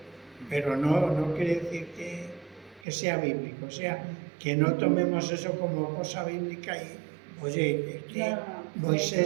pero no quiere decir que sea bíblico, o sea, que no tomemos eso como cosa bíblica y, oye, es que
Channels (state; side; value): drops out; left; at 2.9 s